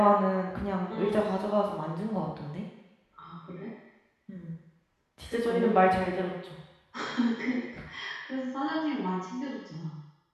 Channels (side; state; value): both; identical; correlation 1.00